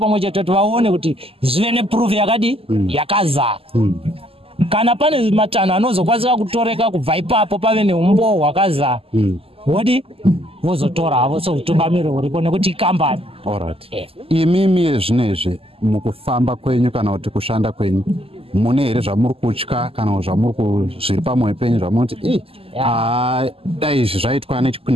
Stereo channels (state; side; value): late; left; 0.28 ms